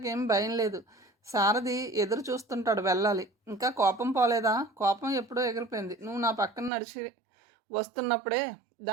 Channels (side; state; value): left; drops out; at 6.7 s